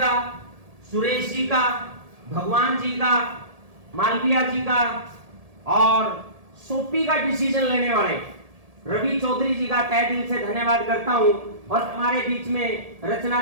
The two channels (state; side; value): late; left; 1.7 ms